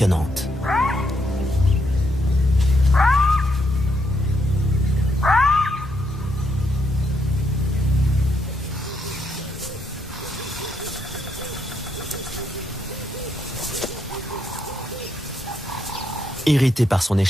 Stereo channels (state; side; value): normal; both; correlation 0.77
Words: Irrité par son